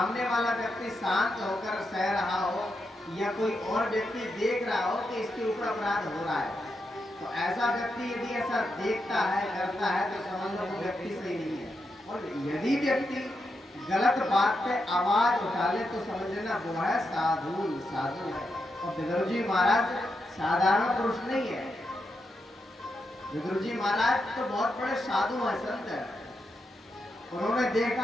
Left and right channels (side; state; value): both; normal; correlation 0.85